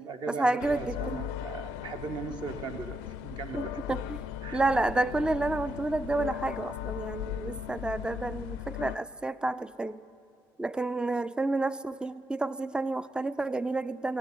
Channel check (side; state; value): both; normal; correlation 0.81